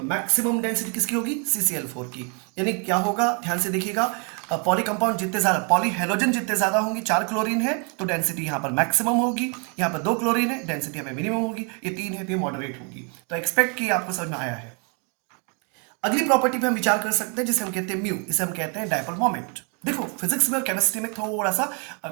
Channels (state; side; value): quieter; left; 36.3 dB